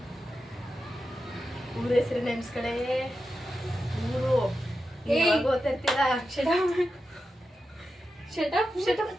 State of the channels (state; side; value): normal; both; correlation 0.90